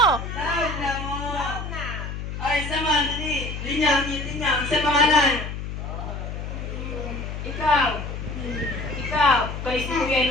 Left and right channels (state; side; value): noise; left; hum, 6 dB below the sound